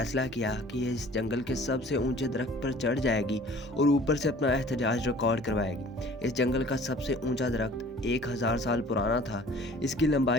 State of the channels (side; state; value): both; normal; correlation 0.49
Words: किया कि ये इस जंगल के सबसे ऊंचे दरख्त पर चढ़ जाएगी और ऊपर से अपना एहतजाज रिकॉर्ड करवाएगी। इस जंगल का सबसे ऊंचा दरख्त 1000 साल पुराना था। इसकी